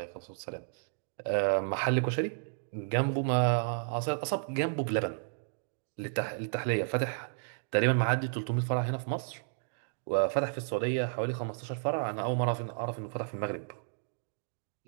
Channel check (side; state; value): left; silent; digital silence